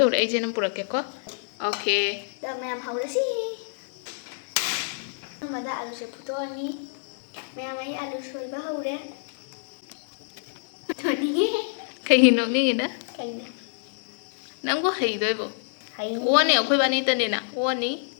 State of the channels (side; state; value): right; silent; 60 dB below the other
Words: hore ai jenam purak ke ko okay Da ma'am haura si. Mada alu se puto ani. Ma'am ai alu soi ba haure. To ni kai hino ni na kai na. nang ko hei doi bo Hai. wani akhoi bani ta ne na wani